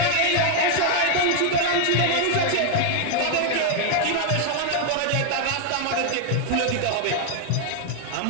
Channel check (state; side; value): different; both; correlation 0.00